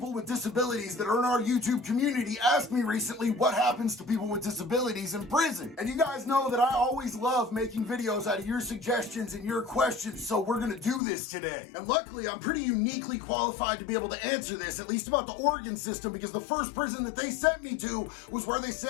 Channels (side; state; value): right; drops out; at 11.0 s